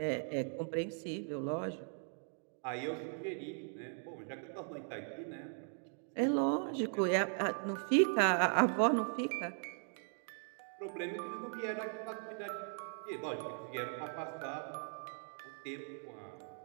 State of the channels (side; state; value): left; silent; 52 dB below the other